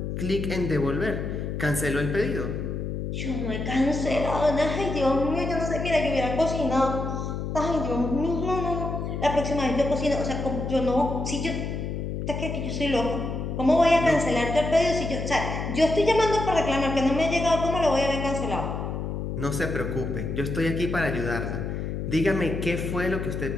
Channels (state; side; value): noise; left; hum, 4 dB below the sound